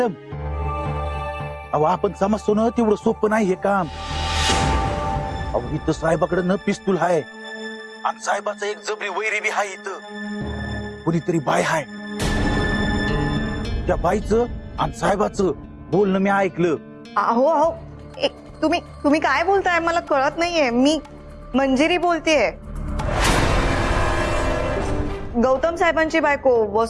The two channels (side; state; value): both; identical; correlation 1.00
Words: अहो आपण समजतो ना तेवढं सोपं नाही हे काम. अहो इथं साहेबाकडे न पिस्तूल हाय आणि साहेबाचा एक जबरी वैरी बी हाय. इथं कुणीतरी बाय हाय. त्या बाईचं आणि साहेबाचं बोलणं मी ऐकलं. अहो अहो तुम्ही काय बोलताय मला कळत नाहीये. मी मंजिरी बोलतेय. गौतम साहेबांची बायको